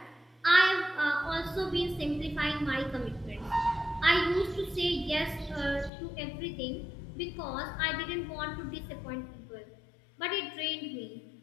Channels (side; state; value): right; drops out; at 5.9 s